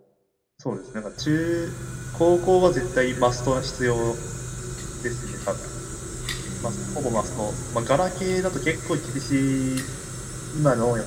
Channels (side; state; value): both; identical; correlation 1.00